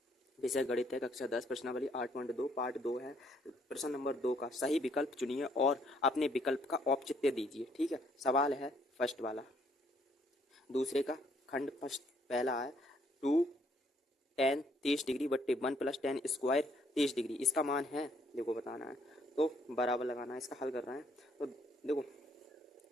विषय गणित है, कक्षा 10, प्रश्नावली 8.2। पार्ट 2 है। प्रश्न नंबर 2 का सही विकल्प चुनिए और अपने विकल्प का औचित्य दीजिए। ठीक है, सवाल है फर्स्ट वाला, दूसरे का खंड फर्स्ट पहला है 2 tan 30 डिग्री बट्टे 1 + tan स्क्वायर 30 डिग्री, इसका मान है देखो बताना है, तो बराबर लगाना है। इसका हल कर रहे हैं तो देखो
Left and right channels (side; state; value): both; normal; correlation 0.67